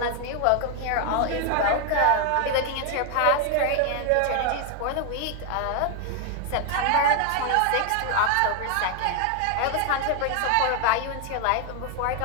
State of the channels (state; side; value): different; both; correlation 0.00